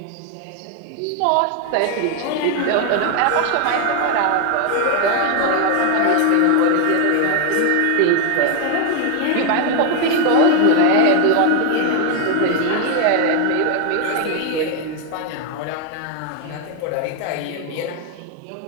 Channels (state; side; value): different; both; correlation 0.01